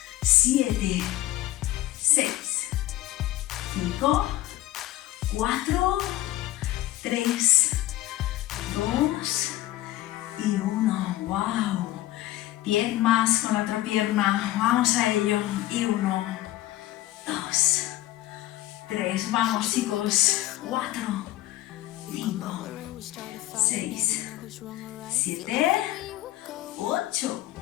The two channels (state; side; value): quieter; right; 15.5 dB